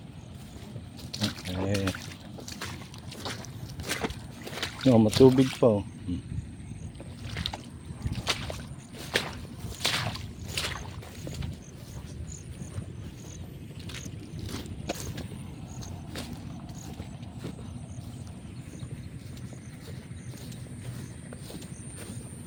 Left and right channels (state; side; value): identical; both; correlation 1.00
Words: Okay. No, matubig pa oh.